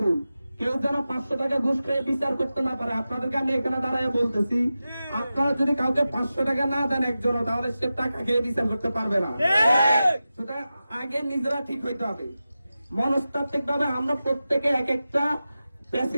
কেউ যেন 500 টাকা ঘুষ খেয়ে বিচার করতে না পারে। আপনাদেরকে আমি এখানে দাঁড়ায় বলতেছি, আপনারা যদি কাউকে 500 টাকা না দেন একজনও, তাহলে সে টাকা খেয়ে বিচার করতে পারবে না। সুতরাং আগে নিজেরা ঠিক হইতে হবে। মনস্তাত্ত্বিক ভাবে আমরা প্রত্যেকে এক একটা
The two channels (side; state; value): both; inverted; correlation -0.93